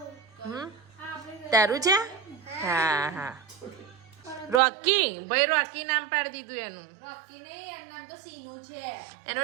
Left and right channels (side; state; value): left; drops out; at 4.6 s